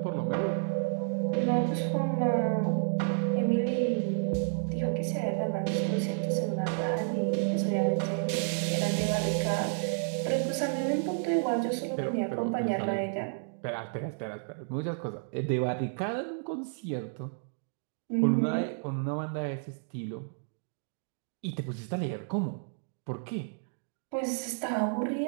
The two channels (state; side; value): silent; left; digital silence